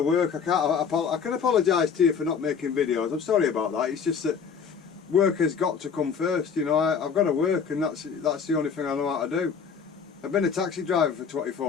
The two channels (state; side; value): quieter; right; 6.4 dB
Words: work. I can apologise to you for not making videos. I'm sorry about that. It's just that work has got to come first. You know, I've got to work, and that's the only thing I know how to do. I've been a taxi driver for